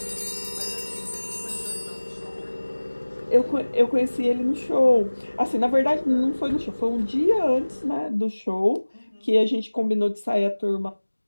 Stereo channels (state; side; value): inverted; both; correlation -1.00